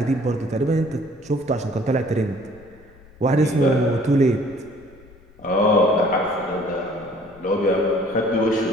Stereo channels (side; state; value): left; noise; rumble, 25 dB below the sound